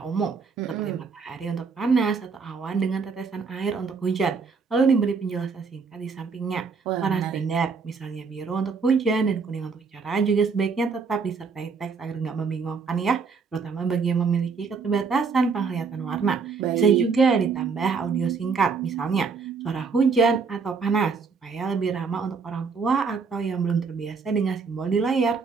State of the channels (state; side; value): quieter; left; 5.2 dB